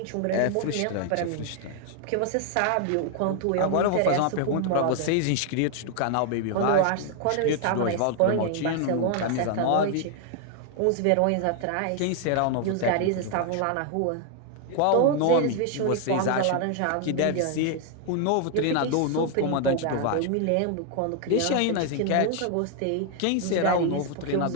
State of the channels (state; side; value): different; both; correlation 0.00